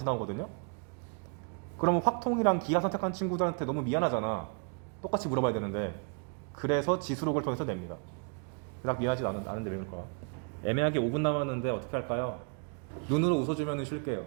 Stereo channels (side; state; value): left; quieter; 39.3 dB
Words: 나오거든요. 그러면 확통이랑 기하 선택한 친구들한테 너무 미안하잖아. 똑같이 물어봐야 되는데. 그래서 지수로그를 통해서 냅니다. 그닥 미안하지도 않은데 왜 그럴까? 애매하게 5분 남았는데 어떻게 할까요? 눈으로 웃어주면 쉴게요.